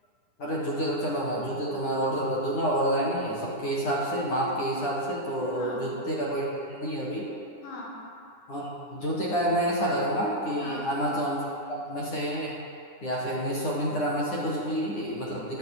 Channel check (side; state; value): right; late; 9.8 ms